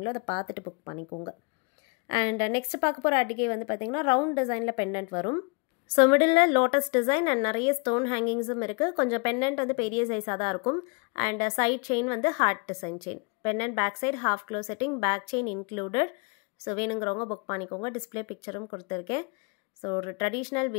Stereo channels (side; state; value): right; quieter; 32.7 dB